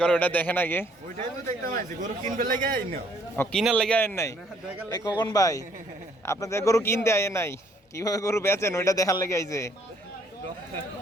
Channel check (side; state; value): both; normal; correlation 0.64